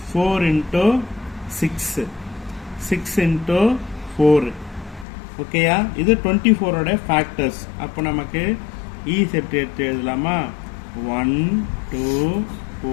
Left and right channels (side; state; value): right; drops out; at 5.1 s